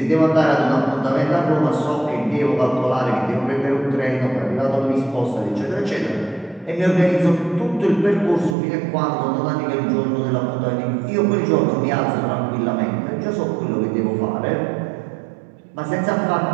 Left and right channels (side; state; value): left; drops out; at 8.6 s